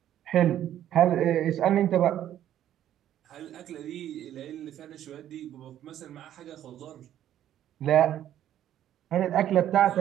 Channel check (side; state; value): left; quieter; 11.5 dB